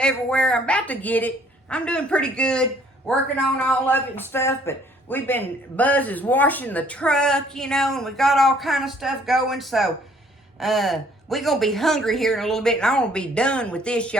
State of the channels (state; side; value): normal; both; correlation 0.61